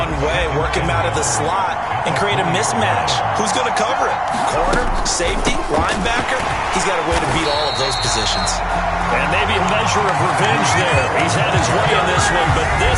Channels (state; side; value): identical; both; correlation 1.00